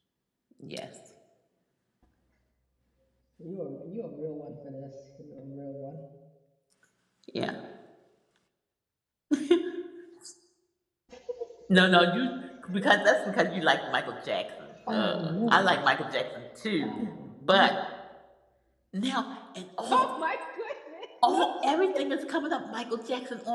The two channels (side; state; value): both; identical; correlation 1.00